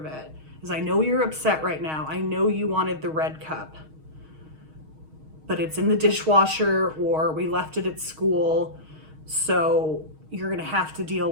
it, is I know you're upset right now. I know you wanted the red cup, but it's in the dishwasher or we left it at school. So you're gonna have to deal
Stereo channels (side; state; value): left; late; 6.4 ms